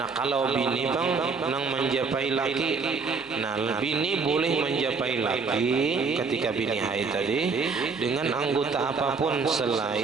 kalau bini bang nang menjapai laki, nah bini boleh menjapai laki ketika bini haid tadi dengan anggota apapun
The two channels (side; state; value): left; quieter; 4.8 dB